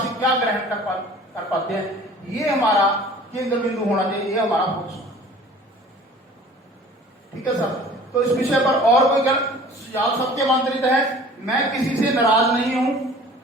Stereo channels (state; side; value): normal; both; correlation 0.47